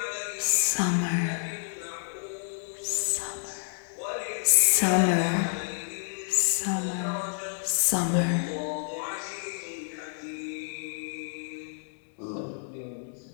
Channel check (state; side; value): silent; right; digital silence